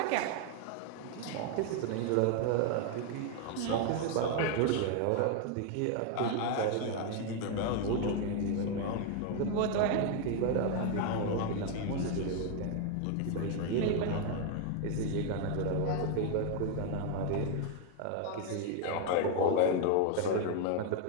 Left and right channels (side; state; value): both; different; correlation 0.00